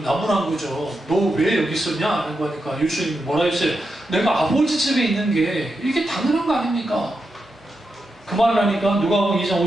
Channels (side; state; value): both; normal; correlation 0.87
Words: 거죠. 너 왜 여기 있었냐? 하는 거니까 예수님이 뭐라 했어요? 내가 아버지 집에 있는 게 이게 당연한 거 아닙니까? 그 말을 하니까 누가복음 2장